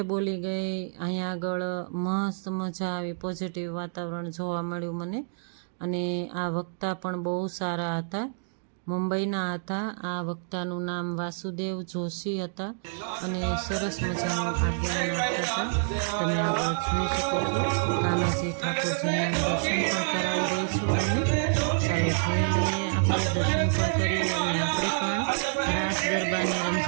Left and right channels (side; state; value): left; silent; digital silence